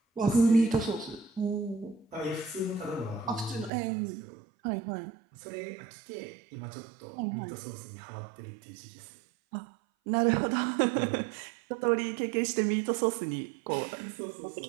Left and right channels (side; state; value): left; drops out; at 3.7 s